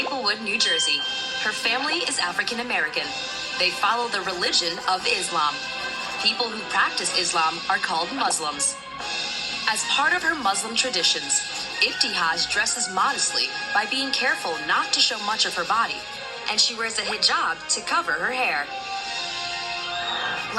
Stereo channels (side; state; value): both; identical; correlation 1.00